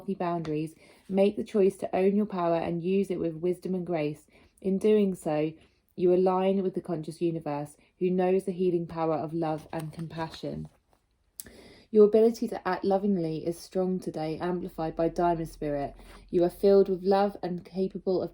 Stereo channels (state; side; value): identical; both; correlation 1.00